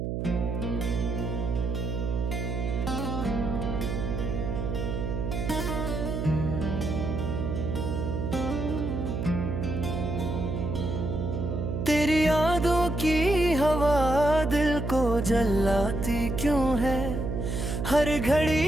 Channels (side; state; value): right; noise; hum, 2 dB below the sound